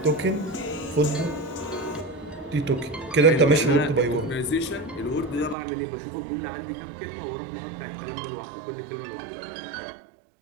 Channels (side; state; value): left; drops out; at 5.6 s